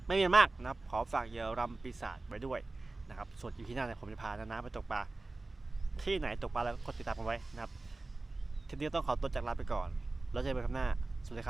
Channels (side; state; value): left; quieter; 3.2 dB